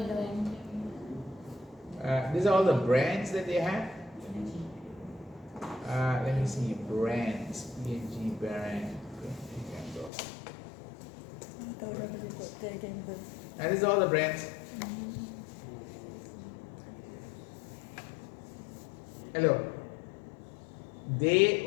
know. These are all the brands that they have. Let me see, brands, P&G brand. And these are all the brands. Hello. They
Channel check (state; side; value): drops out; right; at 10.1 s